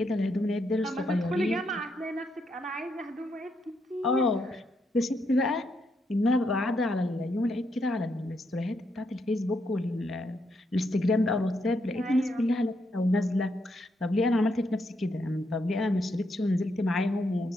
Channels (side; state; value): both; normal; correlation 0.79